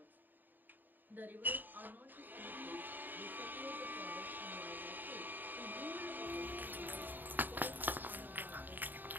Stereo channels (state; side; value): late; left; 0.090 ms